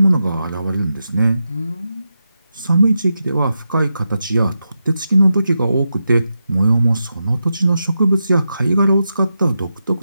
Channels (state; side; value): inverted; both; correlation -0.88